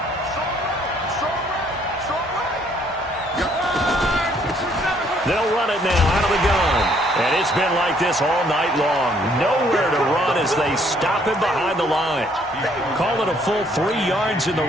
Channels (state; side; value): normal; both; correlation 0.65